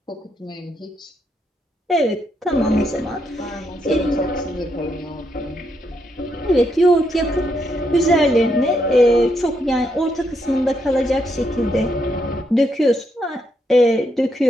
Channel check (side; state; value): both; normal; correlation 0.78